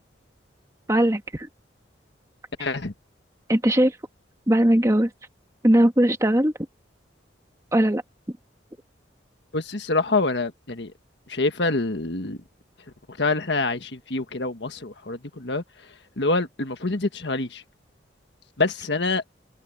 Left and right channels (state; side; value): normal; both; correlation 0.56